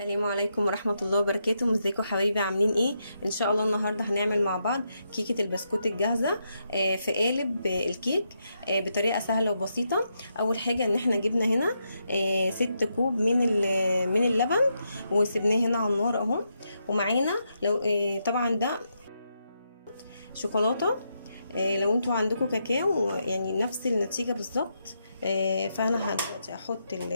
عليكم ورحمه الله وبركاته. ازيكم حبايبي، عاملين ايه؟ ان شاء الله النهارده هنعمل مع بعض كيكه البسكوت الجاهزه في قالب الكيك بطريقه سهله وبسيطه. اول حاجه ان احنا جبنا هنا 6 كوب من اللبن وسبناه هنا على النار اهو. ومعانا لو طبعا ده شوكولاته لو انتوا عندكم كاكاو يعني نفس النتيجة بالظبط. فانا دلوقتي هحط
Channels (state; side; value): inverted; both; correlation -0.82